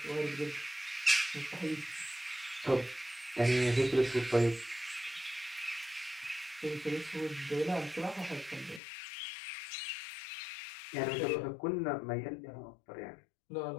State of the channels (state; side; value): drops out; right; at 8.8 s